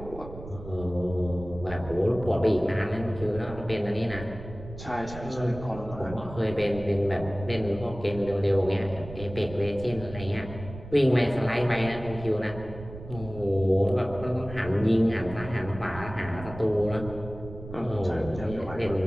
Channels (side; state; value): right; noise; rumble, 13 dB below the sound